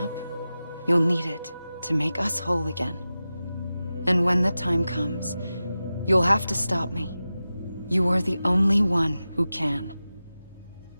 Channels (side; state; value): both; inverted; correlation -0.94